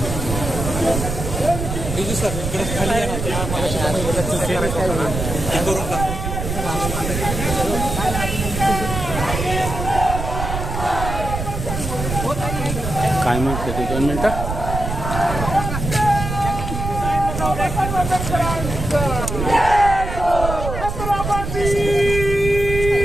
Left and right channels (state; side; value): noise; right; rumble, 4 dB below the sound